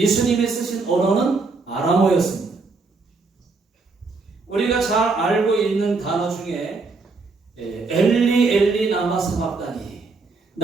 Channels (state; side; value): quieter; left; 4.0 dB